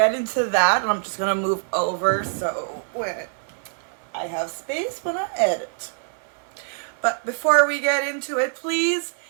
into that, and I'm just gonna move over so when I have space when I edit. But before we get into it, please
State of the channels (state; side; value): silent; left; 62 dB below the other